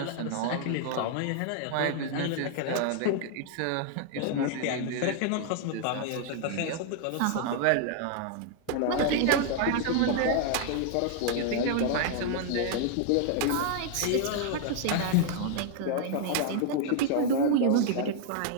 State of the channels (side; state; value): both; different; correlation 0.00